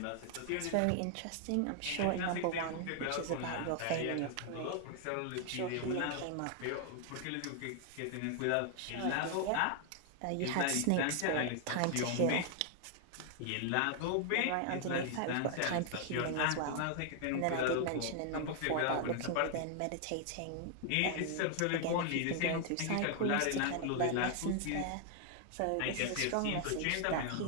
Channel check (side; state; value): both; different; correlation 0.00